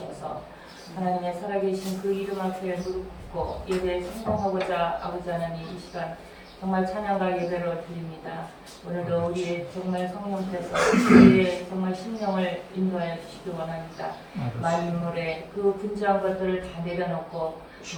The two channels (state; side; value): identical; both; correlation 1.00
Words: 하나님의 살아계신 그 이름 앞에 무릎 꿇고 예배에 성공하고자 아버지 하나님 이 시간 정말 찬양과 예배로 드립니다. 오늘도 우리의 정말 성령께서 우리의 정말 심령을 인도하여 주시기 원합니다. 만물의 그 분주한 것들을 다 내려놓고